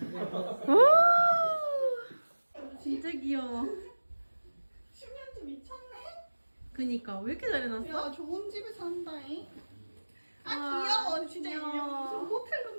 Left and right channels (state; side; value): inverted; both; correlation -1.00